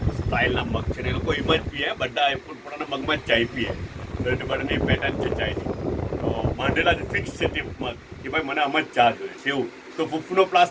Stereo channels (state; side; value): identical; both; correlation 1.00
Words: સ્ટાઇલના મગ છે ને એ લોકો એમ જ પીએ બધા પોતાના મગમાં જ ચાય પીએ તો એટલે બધાની પેટર્ન છે ચાયની તો માંડેલા ફિક્સ છે તે મગ કે ભાઈ મને આમ જ ચા જોઈએ છે એવું તો ફૂફનો